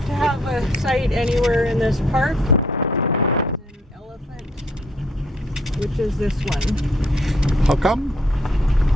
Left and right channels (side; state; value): both; normal; correlation 0.67